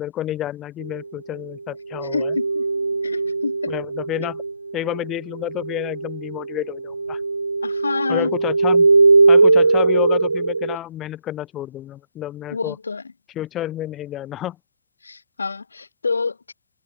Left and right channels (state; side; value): inverted; both; correlation -0.79